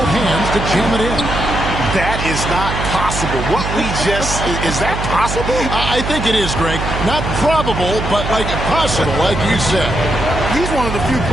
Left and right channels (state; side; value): noise; right; hum, 4 dB below the sound